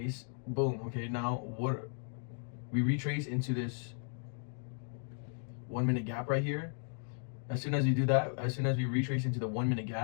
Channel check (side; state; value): right; silent; 54 dB below the other